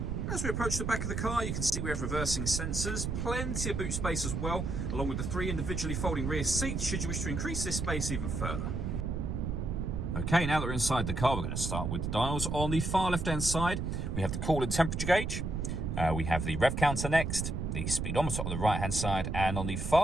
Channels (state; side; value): noise; right; rumble, 2 dB below the sound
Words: As we approach the back of the car, you can see we have reversing sensors, plenty of boot space as well, along with the 3 individually folding rear seats should you wish to increase this space even further. Okay, now that we're inside the car, we're going to start with the dials. On the far left-hand side, we have the coolant temperature gauge. We have the rev counter next, the speedometer on the right-hand side, and on the